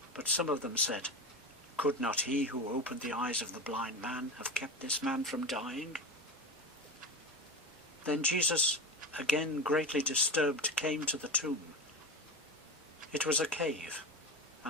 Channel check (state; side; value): normal; both; correlation 0.25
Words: But some of them said, "Could not he who opened the eyes of the blind man have kept this man from dying?" Then Jesus, again greatly disturbed, came to the tomb. It was a cave,